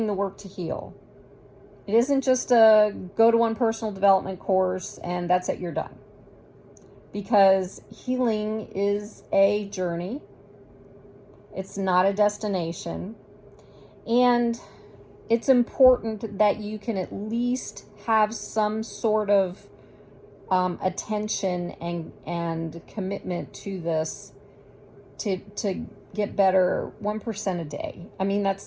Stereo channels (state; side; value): identical; both; correlation 1.00